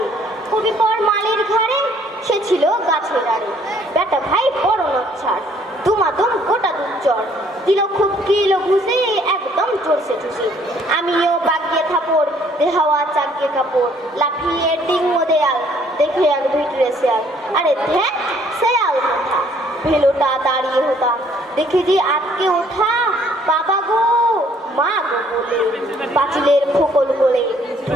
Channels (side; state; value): both; normal; correlation 0.62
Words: কবি পর মালির ঘাড়ে সে ছিল গাছের আড়ে বেটা ভাই বড় নচ্ছাড় দুমাদম গোটা দুচর দিল খুব কিলো ঘুষে একদম চড়ছে ঠুসি আমিও বাগিয়ে থাপড় দেহাওয়া চাগিয়ে কাপড় লাফিয়ে ডিঙ্গো দেয়াল দেখে এক ভিতরে শেয়াল আরে ধ্যান শেয়াল কথা ভেলোটা দাঁড়িয়ে হতাম দেখে যে আটকে ওঠা বাবা গো মা গো বলে পাঁচিলের ফোকল বলে